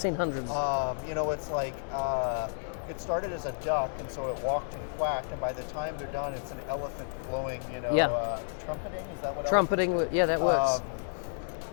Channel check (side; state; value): right; silent; digital silence